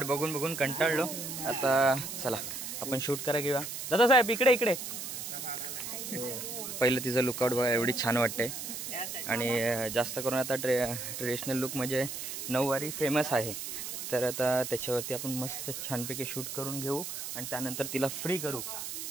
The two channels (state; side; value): noise; right; hiss, 6 dB below the sound